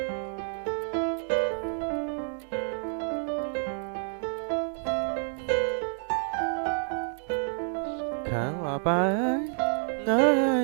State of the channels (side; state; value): left; silent; 59 dB below the other